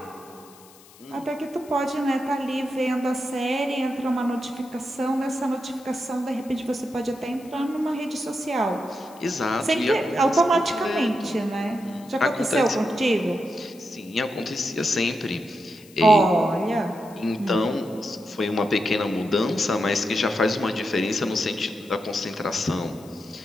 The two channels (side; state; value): left; noise; hiss, 24 dB below the sound